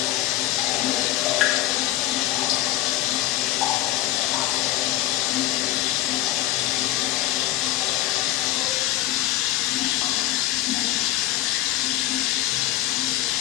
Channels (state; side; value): quieter; right; 15.0 dB